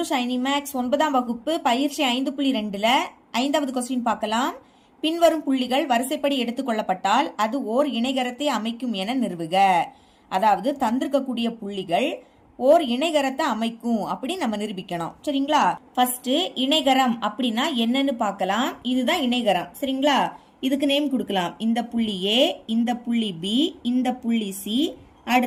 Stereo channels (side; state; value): both; identical; correlation 1.00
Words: Shiny Max. 9ஆம் வகுப்பு பயிற்சி 5.2ல 5வது கொஸ்டின் பார்க்கலாம். பின்வரும் புள்ளிகள் வரிசைப்படி எடுத்துக்கொள்ளப்பட்டால் அது ஓர் இணைகரத்தை அமைக்கும் என நிறுவுக. அதாவது தந்திருக்கக்கூடிய புள்ளிகள் ஓர் இணைகரத்தை அமைக்கும் அப்படி நம்ம நிரூபிக்கணும். சரிங்களா? ஃபர்ஸ்ட் இணைகரம் அப்படின்னா என்னன்னு பார்க்கலாம். இதுதான் இணைகரம். சரிங்களா? இதுக்கு நேம் கொடுக்கலாம். இந்த புள்ளி ஏ, இந்த புள்ளி பி, இந்த புள்ளி சி,